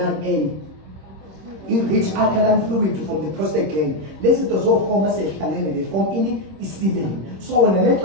I-rich alkaline fluid from the prostate gland. Lezi zinto zoforma sezihlanganene they form i-semen. So wena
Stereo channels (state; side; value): late; left; 26 ms